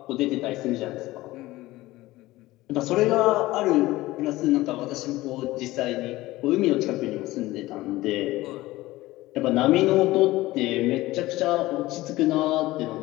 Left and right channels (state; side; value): quieter; right; 18.0 dB